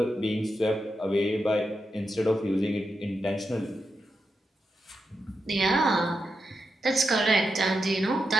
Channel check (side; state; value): both; normal; correlation 0.87